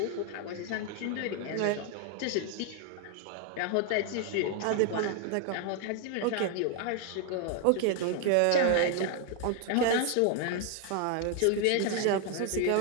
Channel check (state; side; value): different; both; correlation 0.00